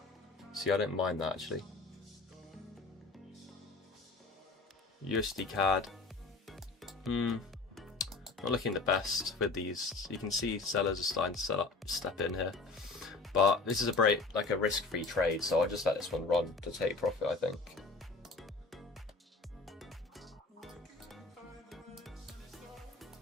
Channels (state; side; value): quieter; right; 3.8 dB